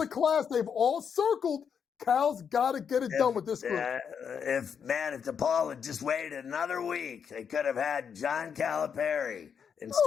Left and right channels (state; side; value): quieter; right; 7.1 dB